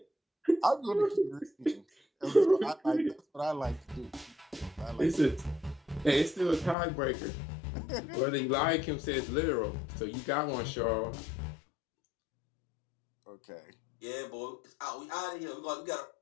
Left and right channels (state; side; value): drops out; right; at 6.8 s